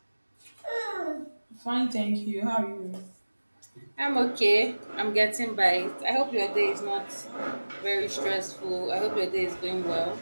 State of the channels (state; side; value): inverted; both; correlation -1.00